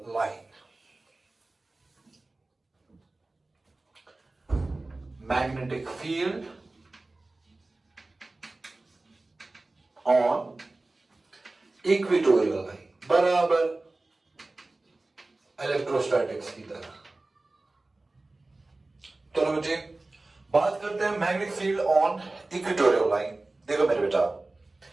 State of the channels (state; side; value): quieter; left; 3.1 dB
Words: line. Magnetic field on equatorial line बराबर electrostatics की तरह। चलो बच्चे बात करते हैं magnetic field on equatorial line. देखो मेरे बेटा,